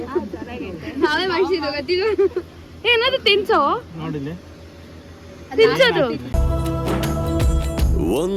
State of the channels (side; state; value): both; identical; correlation 1.00